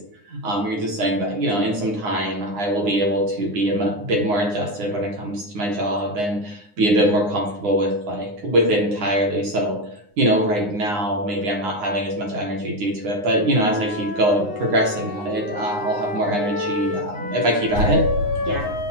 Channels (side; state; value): left; late; 9.7 ms